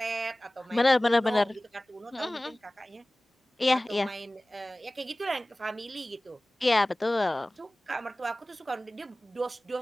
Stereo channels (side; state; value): both; normal; correlation 0.98